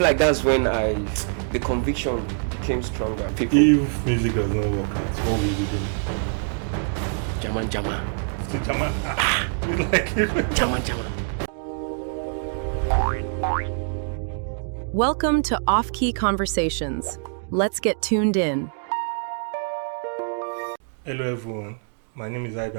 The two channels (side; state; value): left; silent; 62 dB below the other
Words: like that's when the conviction became stronger. People, If music does not work out, what will you do? Jama, Still German? You like it? Jama. Welcome to Offkey Conversations. Let's get tuned in. Hello everyone, my name is HYBEE